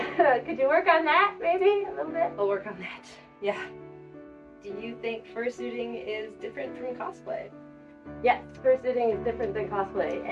Could you work on that, maybe, a little bit? I'll work on that, yeah. Do you think fursuiting is different from cosplay? Yes, fursuiting is different than cosplay.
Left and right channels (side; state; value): both; identical; correlation 1.00